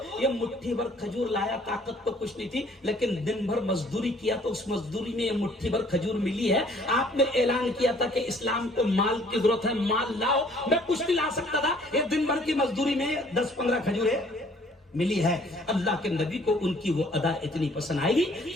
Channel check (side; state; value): both; normal; correlation 0.58